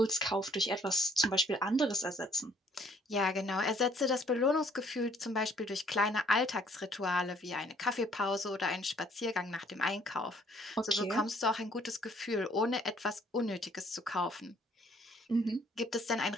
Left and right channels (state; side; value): normal; both; correlation 0.61